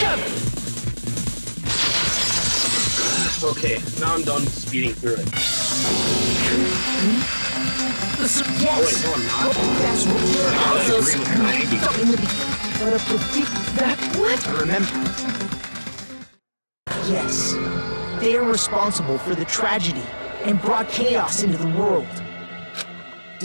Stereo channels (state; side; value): inverted; both; correlation -1.00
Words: Okay, now I'm done speeding through it. Yes. Oh wait, no I'm not. That's what we're I also agree with Maggie. But that what? Remember? Yes. They are responsible for the tragedy and brought chaos into the world.